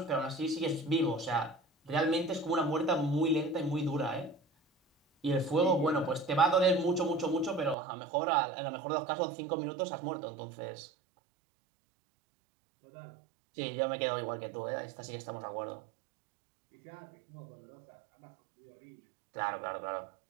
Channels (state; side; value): drops out; left; at 7.8 s